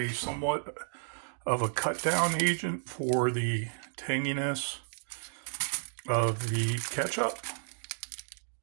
somewhat of a cut down agent for the tanginess of the ketchup.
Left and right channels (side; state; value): left; silent; digital silence